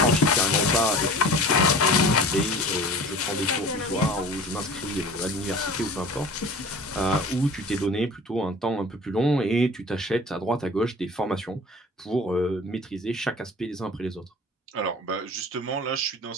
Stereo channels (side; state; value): both; normal; correlation 0.41